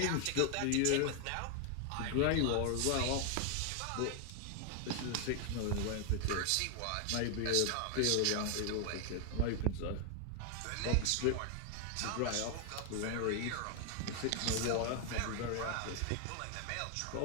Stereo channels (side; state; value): both; different; correlation 0.00